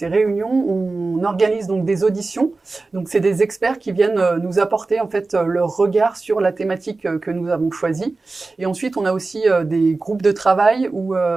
réunions, on organise donc des auditions. Donc c'est des experts qui viennent nous apporter en fait leur regard sur la thématique que nous avons choisie. Et ensuite on a aussi des groupes de travail où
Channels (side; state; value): left; quieter; 3.6 dB